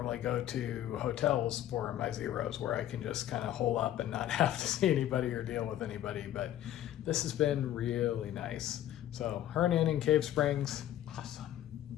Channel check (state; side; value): quieter; right; 12.3 dB